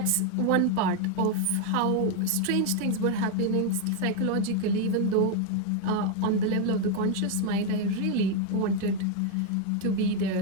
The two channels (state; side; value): different; both; correlation 0.01